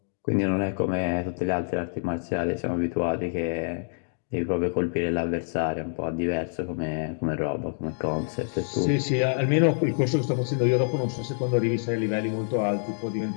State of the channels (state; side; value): silent; right; digital silence